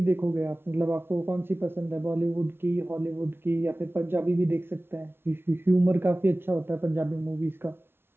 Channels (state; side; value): late; left; 0.11 ms